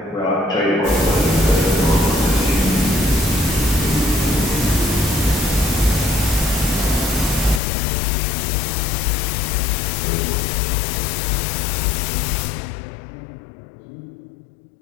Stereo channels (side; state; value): right; drops out; at 7.6 s